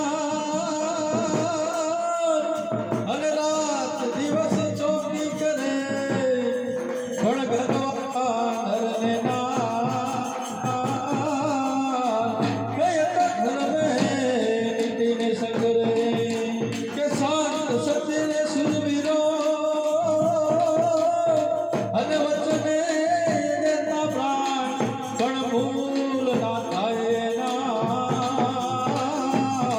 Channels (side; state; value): both; identical; correlation 1.00